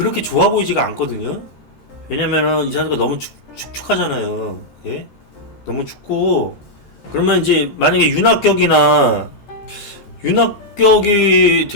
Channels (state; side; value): late; right; 14 ms